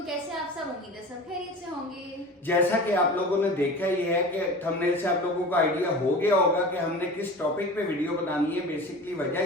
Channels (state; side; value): normal; both; correlation 0.35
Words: कैसे आप सब? उम्मीद है सब खैरियत से होंगे। जैसा कि आप लोगों ने देखा ही है कि थंबनेल से आप लोगों को आइडिया हो गया होगा कि हमने किस टॉपिक पे वीडियो बनानी है। बेसिकली